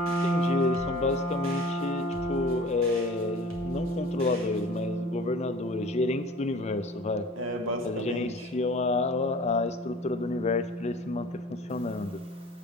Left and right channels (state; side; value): normal; both; correlation 0.44